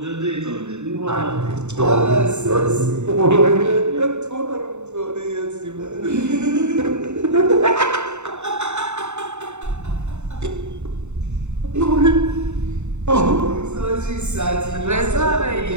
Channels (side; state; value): left; late; 0.83 ms